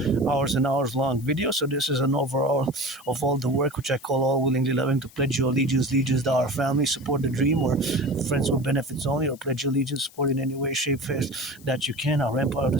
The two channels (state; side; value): noise; left; hiss, 23 dB below the sound